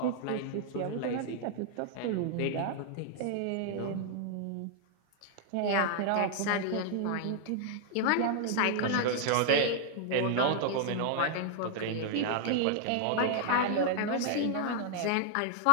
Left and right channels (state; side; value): different; both; correlation 0.00